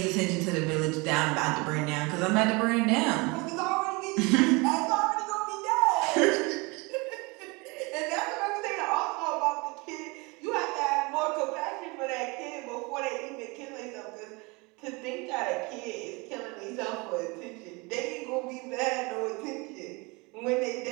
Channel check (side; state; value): left; quieter; 26.9 dB